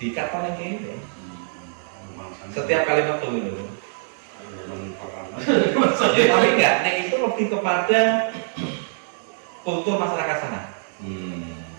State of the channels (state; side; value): silent; left; digital silence